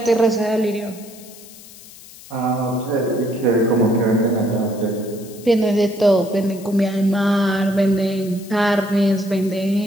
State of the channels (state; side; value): noise; left; hiss, 19 dB below the sound